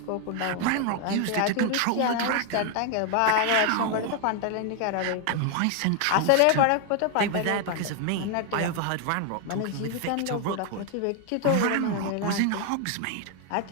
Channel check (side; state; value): both; different; correlation 0.00